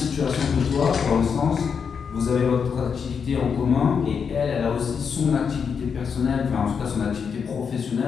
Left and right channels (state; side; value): quieter; right; 6.4 dB